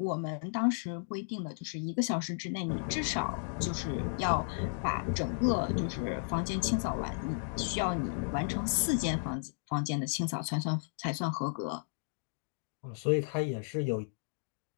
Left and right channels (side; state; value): right; silent; digital silence